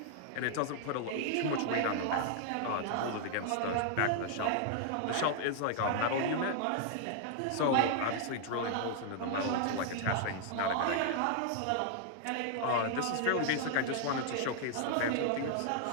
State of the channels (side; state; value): both; different; correlation 0.00